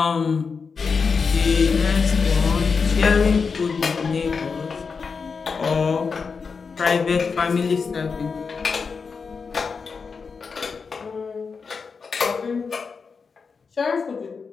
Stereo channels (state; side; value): quieter; right; 5.2 dB